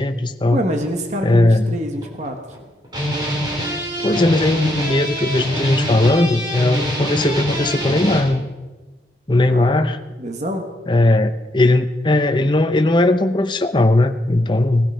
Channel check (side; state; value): both; normal; correlation 0.77